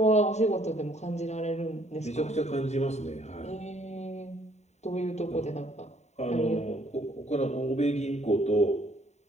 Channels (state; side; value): late; right; 0.32 ms